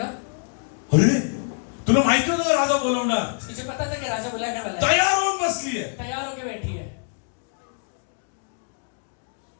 अरे तुला माहिती होतं राजा बोलवणार, तुझे पता था कि राजा बुलाने वाला है, तयार होऊन बसली आहे. तैयार होके बैठी है।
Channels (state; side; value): silent; right; 62 dB below the other